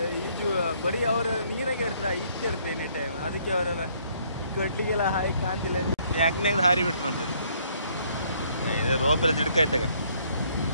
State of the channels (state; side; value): inverted; both; correlation -0.65